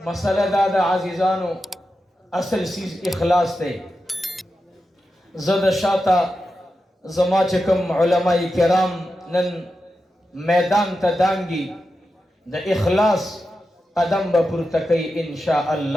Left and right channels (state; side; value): normal; both; correlation 0.90